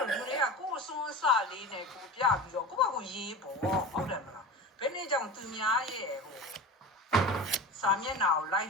ု့လူတွေကကိုယ်အစွန်းအစလေးနဲ့ကိုပြပြီးတော့ကိုယ့်ဘာကိုရေးပေါ့ဟုတ်တယ်မလားဘယ်နည်းကြောင့်သူများရဲ့စာမျက်နှာကို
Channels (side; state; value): both; normal; correlation 0.31